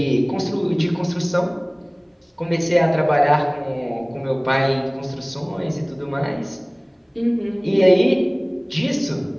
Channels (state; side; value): identical; both; correlation 1.00